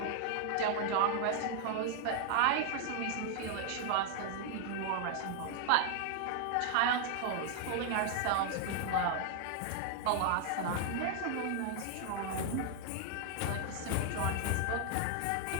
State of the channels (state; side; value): different; both; correlation 0.00